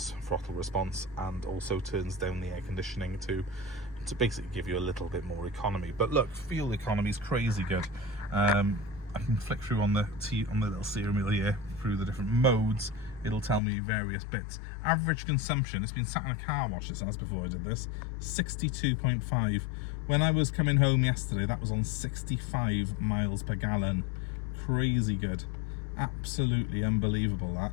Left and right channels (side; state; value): right; drops out; at 13.6 s